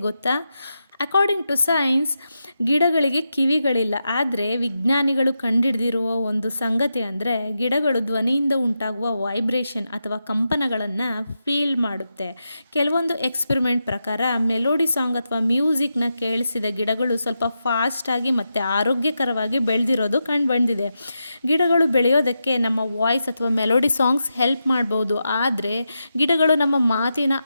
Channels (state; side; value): inverted; both; correlation -0.87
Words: ಗೊತ್ತಾ? ಅಕಾರ್ಡಿಂಗ್ ಟು ಸೈನ್ಸ್ ಗಿಡಗಳಿಗೆ ಕಿವಿಗಳಿಲ್ಲ. ಆದರೆ ವಿಜ್ಞಾನಿಗಳು ಕಂಡುಹಿಡಿದಿರುವ ಒಂದು ಸಂಗತಿ ಅಂದರೆ ಗಿಡಗಳು ಧ್ವನಿಯಿಂದ ಉಂಟಾಗುವ ವೈಬ್ರೇಷನ್ ಅಥವಾ ಕಂಪನಗಳನ್ನು ಫೀಲ್ ಮಾಡುತ್ತೆ. ಕೆಲವೊಂದು ಎಕ್ಸ್ಪೆರಿಮೆಂಟ್ ಪ್ರಕಾರ ಮೆಲೋಡಿ ಸಾಂಗ್ ಅಥವಾ ಮ್ಯೂಸಿಕ್ನ ಕೇಳಿಸಿದ ಗಿಡಗಳು ಸ್ವಲ್ಪ ಫಾಸ್ಟಾಗಿ ಮತ್ತು ಆರೋಗ್ಯಕರವಾಗಿ ಬೆಳೆದಿರೋದು ಕಂಡುಬಂದಿದೆ. ಗಿಡಗಳು ಬೆಳೆಯೋದಕ್ಕೆ ನಮ್ಮ ವಾಯ್ಸ್ ಅಥವಾ ಮೆಲೋಡಿ ಸಾಂಗ್ಸ್ ಹೆಲ್ಪ್ ಮಾಡ್ಬೋದು, ಆದರೆ ಗಿಡಗಳು ನಮ್ಮ ಮಾತಿನ